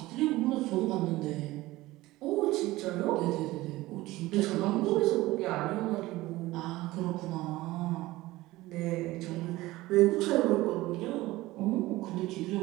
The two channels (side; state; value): left; quieter; 18.4 dB